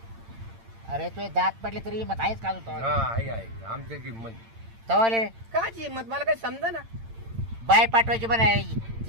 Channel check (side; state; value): left; late; 8.8 ms